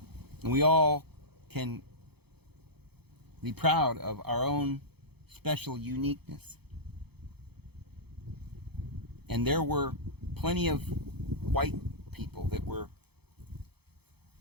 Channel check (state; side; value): late; left; 0.97 ms